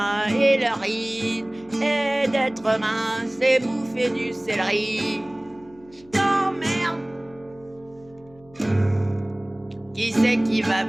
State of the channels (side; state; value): left; noise; hum, 26 dB below the sound